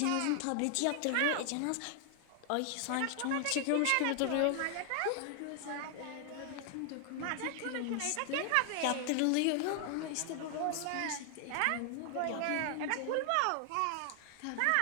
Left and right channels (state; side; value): different; both; correlation 0.00